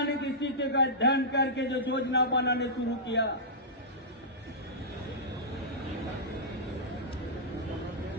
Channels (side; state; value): both; normal; correlation -0.14